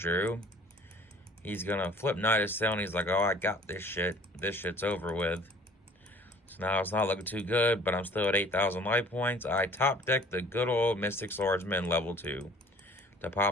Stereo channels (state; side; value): normal; both; correlation 0.50